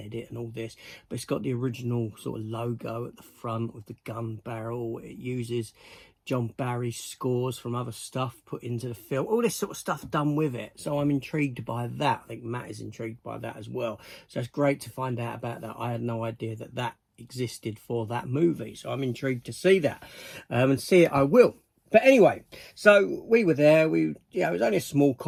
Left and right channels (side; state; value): both; identical; correlation 1.00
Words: and all this, but it's got the original sort of logo at the front with the gun barrel. It uses John Barry's scores from other stuff put into the film, all this sort of stuff done with it. So I'm intrigued by that. I think Matt is intrigued by that as well. So it's great to find out about that. I had no idea that existed for that movie, so I'm intrigued to see that, and see it I will. But anyway, so we were there. It was only a small